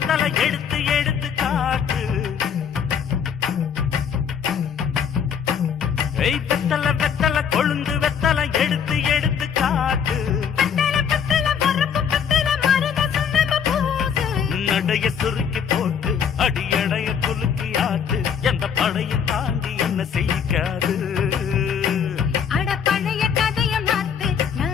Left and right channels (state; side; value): quieter; right; 7.5 dB